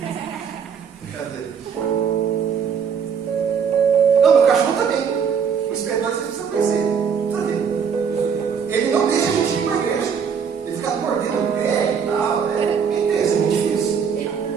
Cadê? Não, meu cachorro também. O inspetor vocês precisam conhecer. Tá vendo? Ele não deixa a gente ir para a igreja. Ele fica mordendo o pé e tal. Isso é muito difícil.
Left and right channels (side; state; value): left; quieter; 6.8 dB